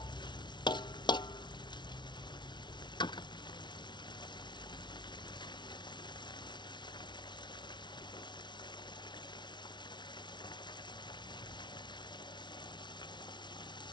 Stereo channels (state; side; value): late; right; 0.22 ms